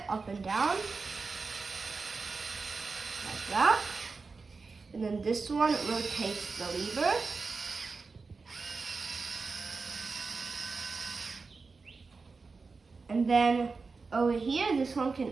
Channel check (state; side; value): quieter; left; 4.4 dB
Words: up and down, like that. And then this one rotates the lever. And then over here, this one can